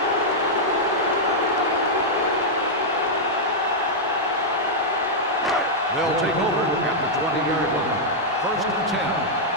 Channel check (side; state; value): both; normal; correlation -0.06